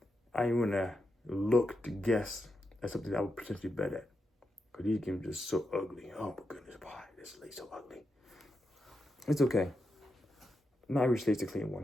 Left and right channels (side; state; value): both; normal; correlation 0.86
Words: to look to guess at something that I would potentially bet at. Because these games are just so ugly. Oh my goodness, why? This slate's so ugly. It's okay. Not every slate's a clean